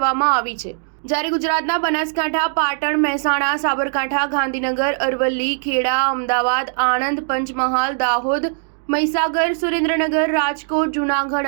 આવી છે. જ્યારે ગુજરાતના બનાસકાંઠા, પાટણ, મહેસાણા, સાબરકાંઠા, ગાંધીનગર, અરવલ્લી, ખેડા, અમદાવાદ, આણંદ, પંચમહાલ, દાહોદ, મહીસાગર, સુરેન્દ્રનગર, રાજકોટ,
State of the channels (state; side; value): silent; left; digital silence